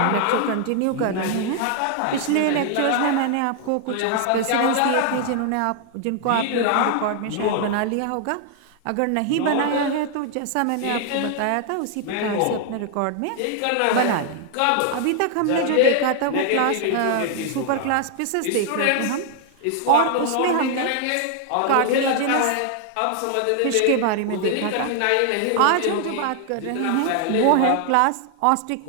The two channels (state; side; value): different; both; correlation 0.00